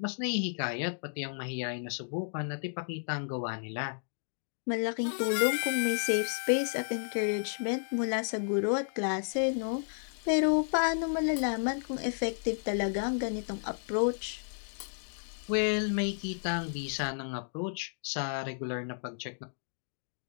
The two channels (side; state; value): right; silent; digital silence